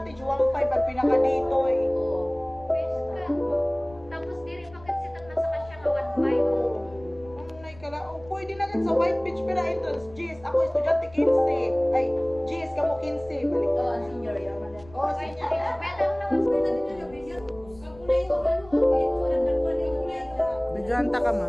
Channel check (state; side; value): noise; left; rumble, 22 dB below the sound